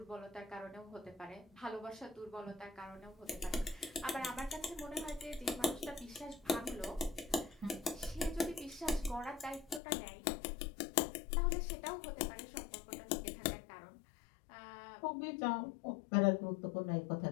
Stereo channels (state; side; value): drops out; right; at 9.8 s